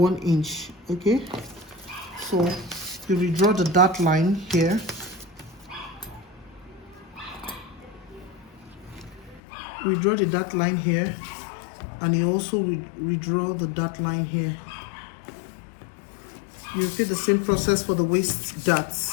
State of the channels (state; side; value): drops out; right; at 9.4 s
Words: inch. Okay, so you redraw the dart line here. Redraw the dart line here, and you also redraw the dart line here. You repeat the same process for the waist